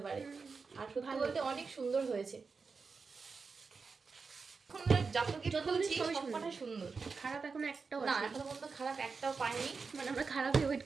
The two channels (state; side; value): quieter; left; 4.8 dB